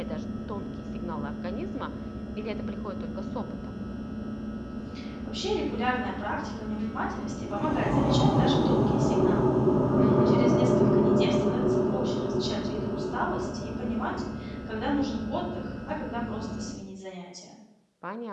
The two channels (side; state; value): both; identical; correlation 1.00